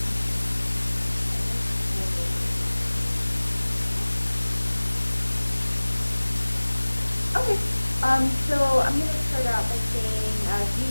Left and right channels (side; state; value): both; inverted; correlation -1.00